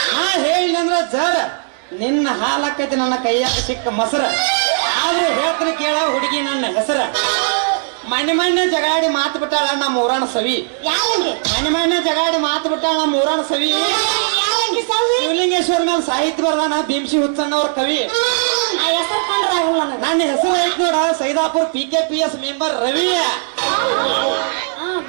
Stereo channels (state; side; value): silent; left; digital silence